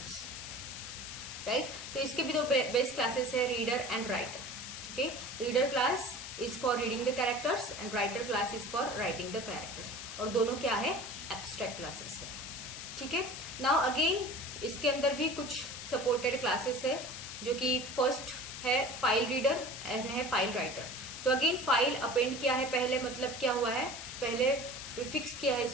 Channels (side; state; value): left; noise; hiss, 9 dB below the sound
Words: right. तो इसके भी दो बेस्ट क्लासेस है, reader and writer. Okay reader class is for reading the characters and writer class is for writing the characters, और दोनों क्या है, एब्स्ट्रैक्ट क्लासेस है। ठीक है, नाउ अगेन इसके अंदर भी कुछ सपोर्टेड क्लासेस है, जो कि फर्स्ट है फाइल रीडर एंड है फाइल राइटर। तो अगेन फाइल अपेंड किया है पहले, मतलब क्या हुआ है, पहले फिक्स किया है